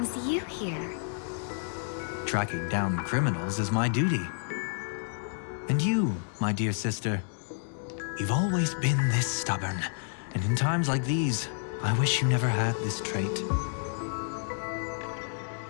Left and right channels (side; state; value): right; silent; digital silence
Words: you here? Tracking down criminals is my duty. And you, my dear sister, you've always been this stubborn, and in times like these, I wish you never had this trait.